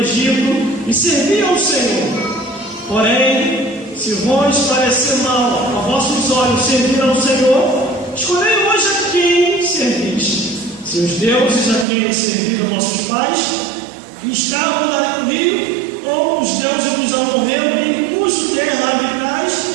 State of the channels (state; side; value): drops out; left; at 11.9 s